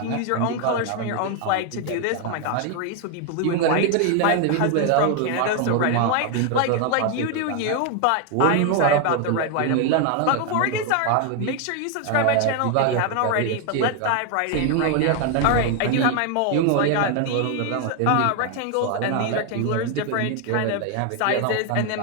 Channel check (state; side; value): different; both; correlation 0.01